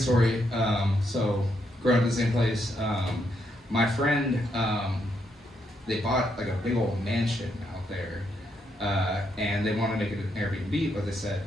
So, growing up in the same place, my friend, they bought like a big old mansion out there. And they wanted to make it an Airbnb, but they said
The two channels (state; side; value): normal; both; correlation 0.78